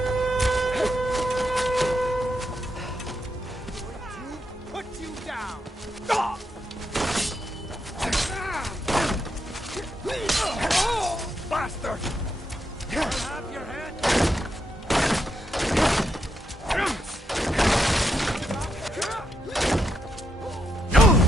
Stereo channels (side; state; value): both; normal; correlation 0.82